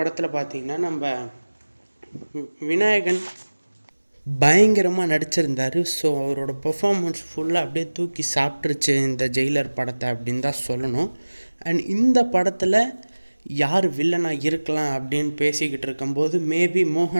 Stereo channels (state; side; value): inverted; both; correlation -1.00